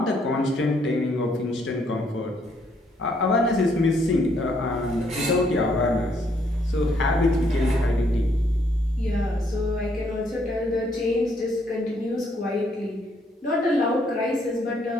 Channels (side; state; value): both; normal; correlation 0.70